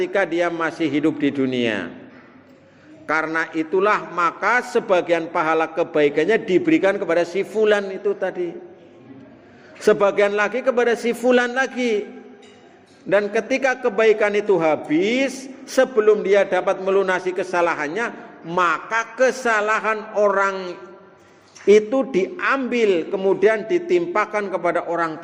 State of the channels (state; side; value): identical; both; correlation 1.00